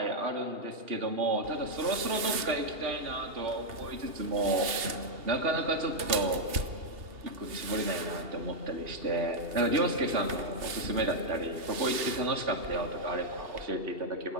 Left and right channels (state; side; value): late; left; 2.7 ms